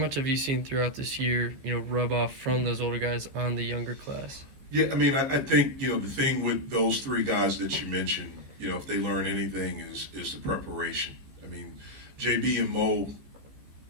have you seen throughout this year, rub off from those older guys on the younger class? Yeah, I mean, I think, the thing with those 3 guys that you mentioned, if they learn anything is the preparation. I mean, JB and Mo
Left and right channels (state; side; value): late; left; 15 ms